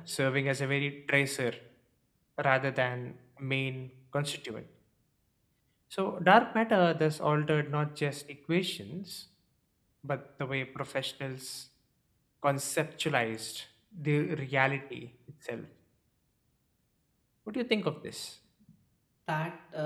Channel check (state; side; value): identical; both; correlation 1.00